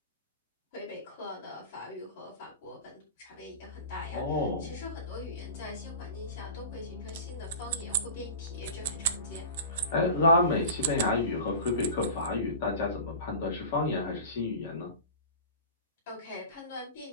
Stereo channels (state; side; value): inverted; both; correlation -0.34